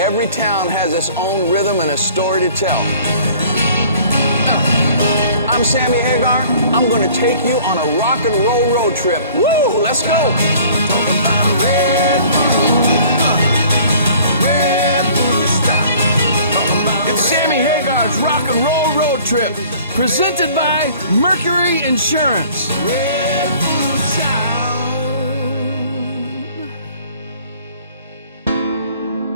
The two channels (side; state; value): both; inverted; correlation -0.51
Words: every town has its own rhythm and a story to tell. I'm Sammy Hagar. I'm going to take you on a rock and roll road trip. Woo! Let's go! It's Sammy Hagar's rock and roll road trip, presented by Mercury Insurance.